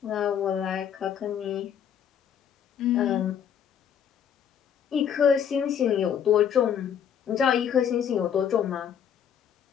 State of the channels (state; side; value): quieter; right; 8.5 dB